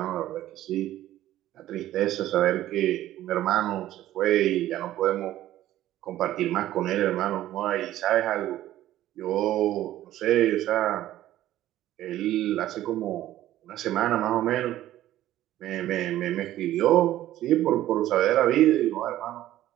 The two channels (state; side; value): quieter; left; 13.9 dB